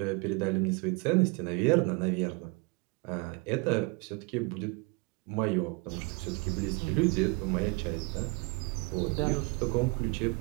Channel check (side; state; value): left; quieter; 28.6 dB